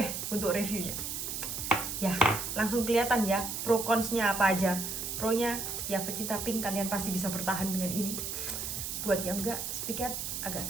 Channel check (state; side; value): noise; right; hiss, 4 dB below the sound